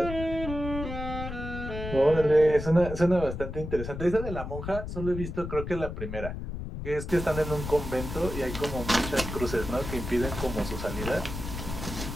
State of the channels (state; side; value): noise; left; rumble, 7 dB below the sound